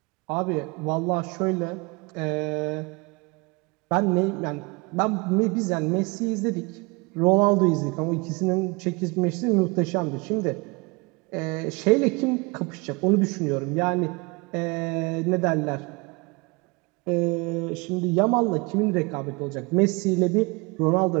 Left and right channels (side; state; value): left; quieter; 27.6 dB